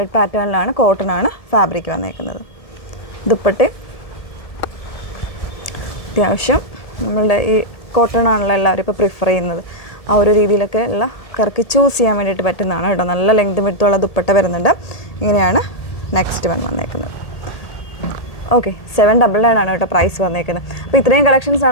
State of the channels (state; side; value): late; right; 1.8 ms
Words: പാറ്റേണിലാണ്, കോട്ടൺ ആണ് ഫാബ്രിക് വന്നേക്കുന്നത്. ദുപ്പട്ടയും അത്യാവശ്യം നമ്മളുടെ ഈ കോട്ടൺ ആണല്ലോ എല്ലാവരും ഇപ്പോൾ പ്രിഫർ ചെയ്യുന്നത്. ആ ഒരു രീതിയിലൊക്കെ ഉള്ള കറക്കി ചൂസ് ചെയ്യാൻ വേണ്ടിയിട്ട് പറ്റുന്നതാണ് കേട്ടോ. നല്ല ലെങ്ത് വിഡ്ത്തുള്ള ദുപ്പട്ട വരുന്നുണ്ട്. ഇങ്ങനെയാണ് നെക്സ്റ്റ് വൺ വന്നേക്കുന്നത്. ഓക്കെ, 799 ആണ് കേട്ടോ പ്രൈസ് വന്നേക്കുന്നത്. അപ്പോൾ ഇത്രയും കളക്ഷൻസ്